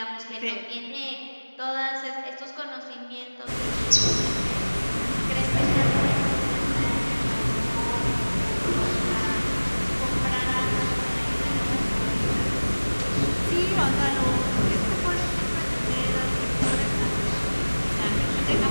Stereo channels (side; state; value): both; inverted; correlation -1.00